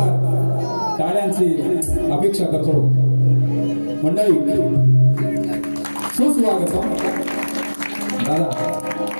टाळ्यांची अपेक्षा करतो मंडळी. सुस्वागतम दादा,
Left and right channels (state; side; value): inverted; both; correlation -1.00